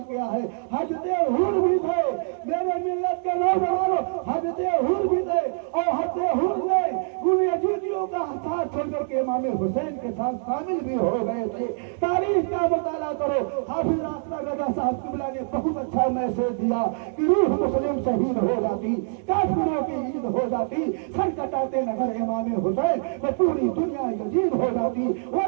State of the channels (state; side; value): silent; left; digital silence